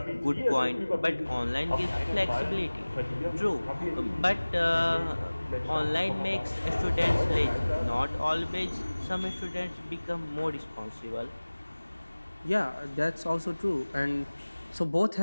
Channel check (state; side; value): inverted; both; correlation -1.00